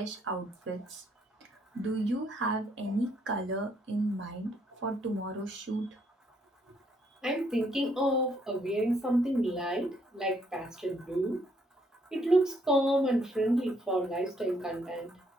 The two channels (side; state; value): both; normal; correlation 0.70